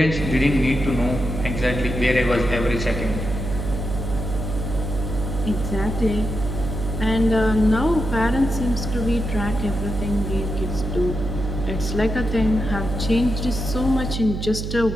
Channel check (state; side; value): noise; right; hum, 4 dB below the sound